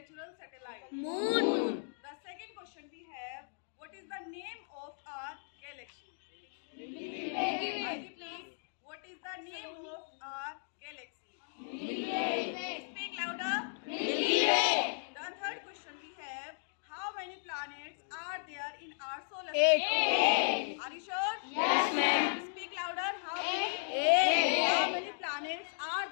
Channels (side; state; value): right; silent; digital silence